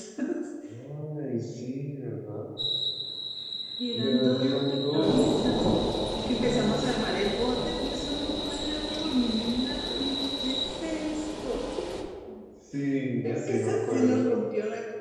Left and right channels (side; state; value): both; identical; correlation 1.00